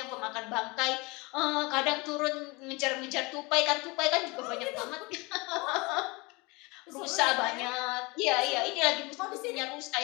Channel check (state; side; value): quieter; right; 26.0 dB